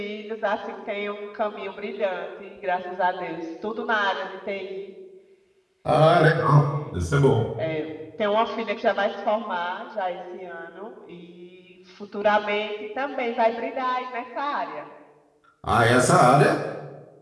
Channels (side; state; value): both; identical; correlation 1.00